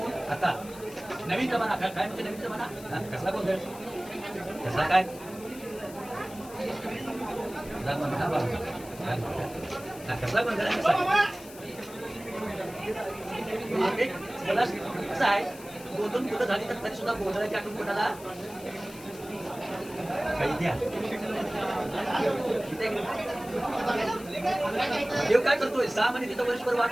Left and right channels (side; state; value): left; noise; hiss, 18 dB below the sound